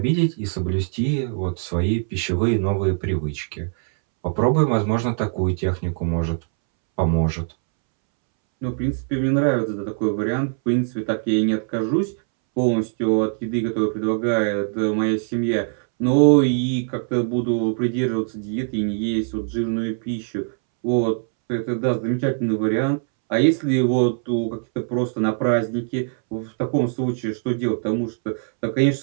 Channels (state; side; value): silent; left; 64 dB below the other